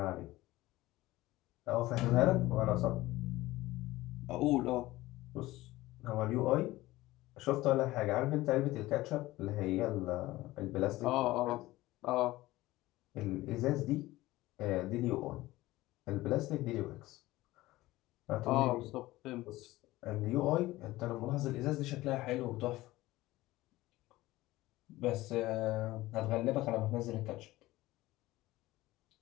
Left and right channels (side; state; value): right; quieter; 17.9 dB